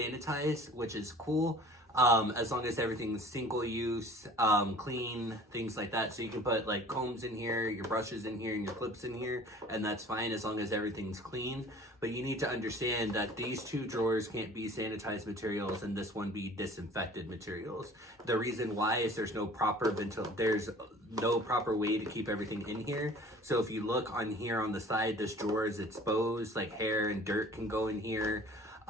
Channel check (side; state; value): both; normal; correlation 0.47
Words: which is cool. As long as everything's single use, clean, things like that. So you can put like combs in here, your brushes in here, and your clips in here, and that's fine as long as everything's clean. But you need to understand that these two drawers can't be sanitized materials and this one be disinfected materials. The reason why is there's no proper way to keep everything in here. So if you look on here on the side, this drawer is exposed, like hair and dirt can go in here.